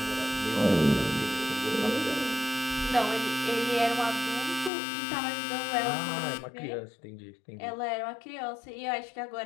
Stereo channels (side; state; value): right; drops out; at 4.7 s